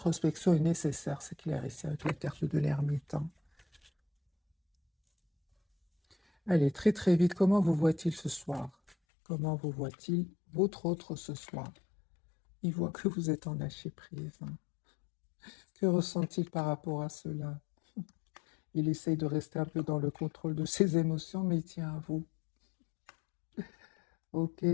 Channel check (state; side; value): drops out; right; at 9.0 s